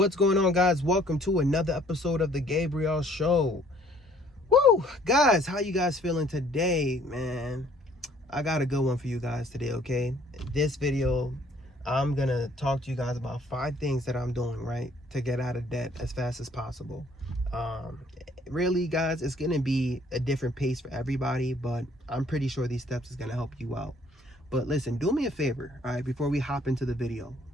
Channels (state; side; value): normal; both; correlation 0.60